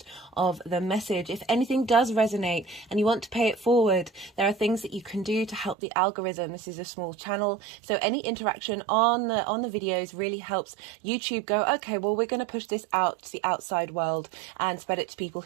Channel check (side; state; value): left; drops out; at 5.8 s